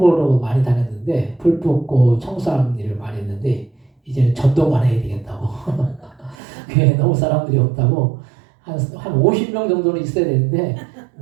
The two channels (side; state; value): left; drops out; at 6.4 s